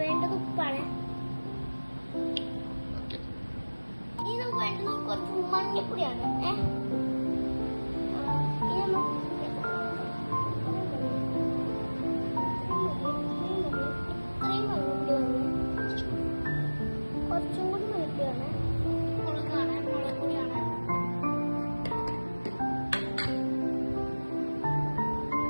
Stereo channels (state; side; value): inverted; both; correlation -1.00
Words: വേണ്ടത് ഉപ്പാണ്. ഇനി നമുക്ക് വേണ്ടത് കുറച്ച് മഞ്ഞപ്പൊടിയാണ്. കുറച്ചും കൂടി മഞ്ഞപ്പൊടിയാണ്. മുളകാണ്, മുളക് പൊടിയാണ്.